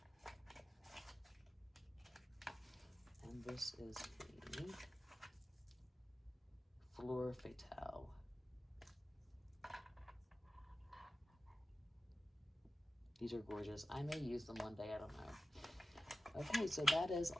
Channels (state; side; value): normal; both; correlation 0.94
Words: And this is the Fleur Fatale. These are gorgeous. I may use them one day, I don't know. Okay, so that is